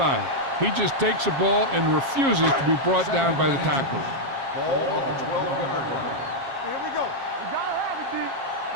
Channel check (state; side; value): late; left; 7.4 ms